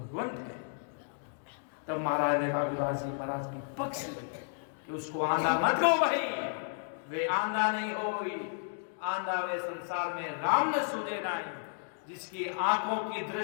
है। तब महाराज ने रघुदास जी महाराज की पक्ष ली कि उसको आंधा मत कहो भाई, वे आंधा नहीं होई, आंधा वे संसार में राम न सूझे नाई। जिसकी आंखों की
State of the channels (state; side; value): silent; right; digital silence